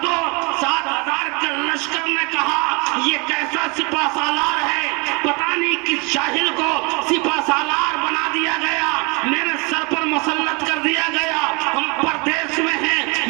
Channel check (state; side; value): quieter; left; 29.7 dB